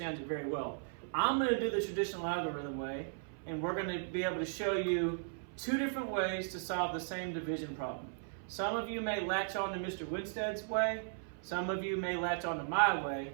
it very well. I'm going to do the traditional algorithm way, and we're going to be able to show you two different ways to solve the same division problem. Some of you may latch on to Mr. Winstead's way, some of you may latch on to my way,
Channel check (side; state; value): left; silent; 53 dB below the other